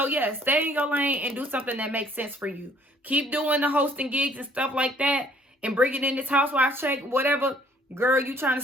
yeah, stay in your lane and do something that makes sense for you. Keep doing the hosting gigs and stuff like that. And bringing in this housewife check, whatever. Girl, you trying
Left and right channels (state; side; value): normal; both; correlation 0.61